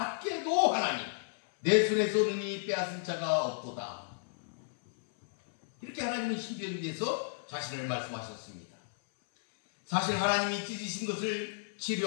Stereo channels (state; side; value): silent; right; 56 dB below the other